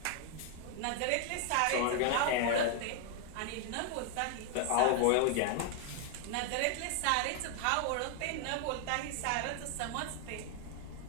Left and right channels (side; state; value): both; different; correlation 0.00